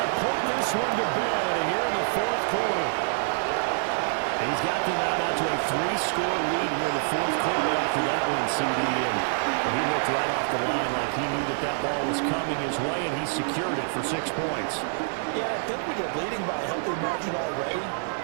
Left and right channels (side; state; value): left; silent; 61 dB below the other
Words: put this one to bed here in the 4th quarter. He's got them out to a 3-score lead here in the 4th quarter after that one, CD. And he looked right off the line like he knew that ball was coming his way, and he secured it for 6 points. Yeah, I think when you're leading by a healthy margin already,